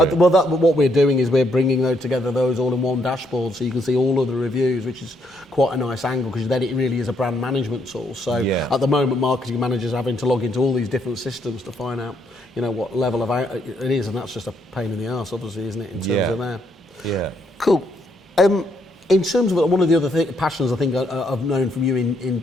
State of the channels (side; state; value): both; normal; correlation 0.73